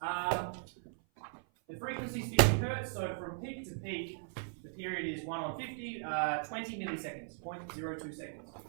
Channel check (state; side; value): silent; left; 52 dB below the other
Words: The frequency is 50 Hertz, so from peak to peak, the period is 1/50, 20 milliseconds, 0.02 seconds.